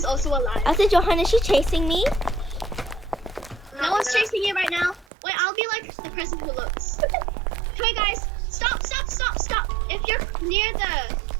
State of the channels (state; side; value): drops out; left; at 5.1 s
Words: also alive. That's a Johan. Is she chasing me? No one's chasing you right now. Wait, I'll be like the person who looks. Okay, guys, stop. If you're near the